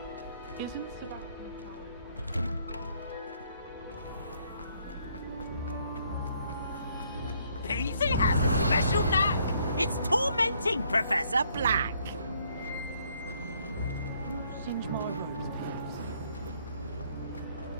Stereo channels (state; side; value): inverted; both; correlation -0.67